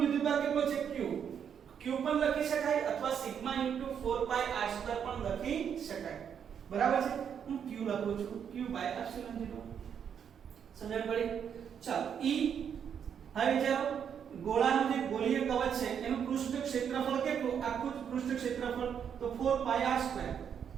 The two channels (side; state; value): left; quieter; 8.0 dB